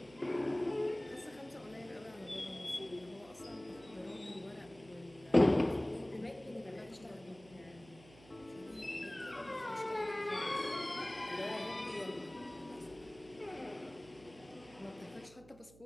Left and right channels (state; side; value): noise; right; hum, 22 dB below the sound